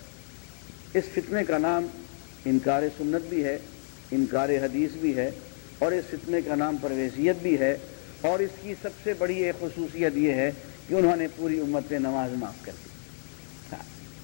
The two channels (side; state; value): right; silent; digital silence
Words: اس فتنے کا نام انکار سنت بھی ہے, انکار حدیث بھی ہے, اور اس فتنے کا نام پرویزیت بھی ہے. اور اس کی سب سے بڑی ایک خصوصیت یہ ہے کہ انہوں نے پوری امت پہ نماز معاف کر دی,